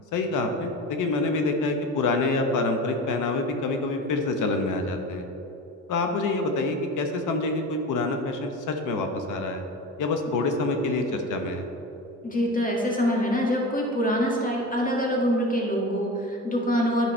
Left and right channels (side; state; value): both; normal; correlation 0.30